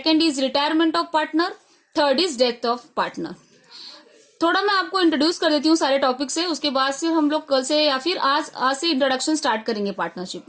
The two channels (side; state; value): both; identical; correlation 1.00